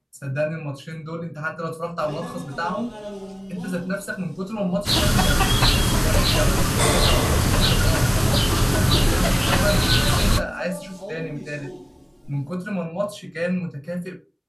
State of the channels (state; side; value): identical; both; correlation 1.00